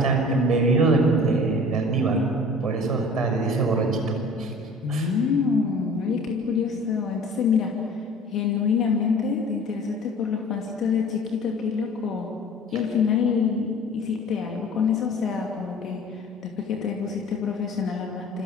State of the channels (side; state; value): both; normal; correlation 0.45